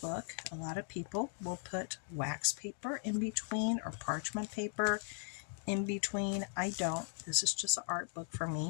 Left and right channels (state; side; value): silent; right; 52 dB below the other